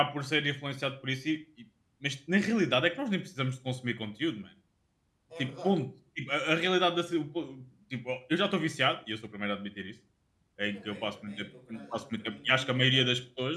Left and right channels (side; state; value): both; identical; correlation 1.00